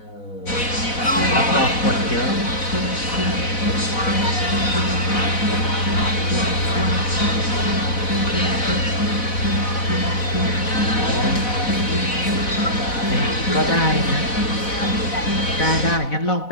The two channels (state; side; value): late; right; 4.1 ms